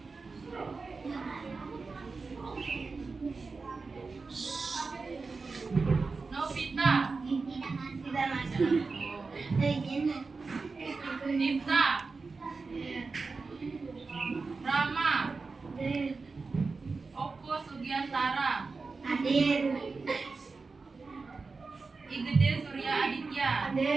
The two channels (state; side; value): quieter; left; 4.2 dB